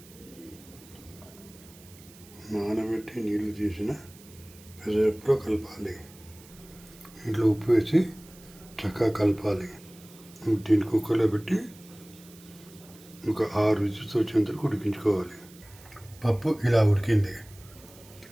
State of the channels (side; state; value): right; noise; hiss, 22 dB below the sound